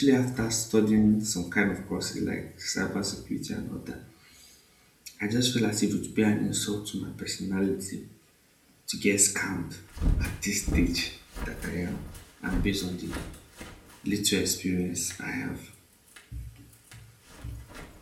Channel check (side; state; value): both; identical; correlation 1.00